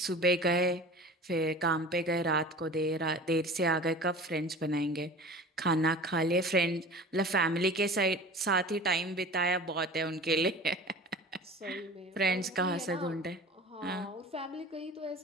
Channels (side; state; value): both; normal; correlation 0.39